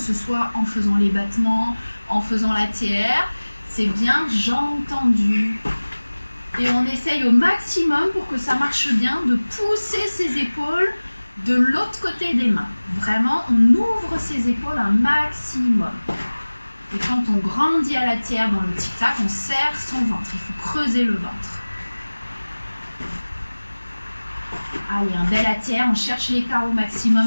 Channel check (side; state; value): both; inverted; correlation -1.00